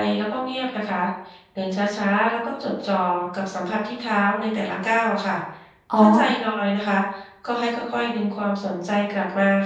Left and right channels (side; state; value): both; identical; correlation 1.00